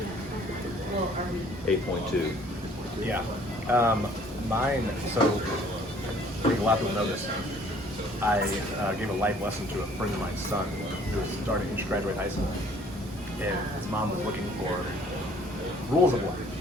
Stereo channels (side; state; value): both; normal; correlation 0.57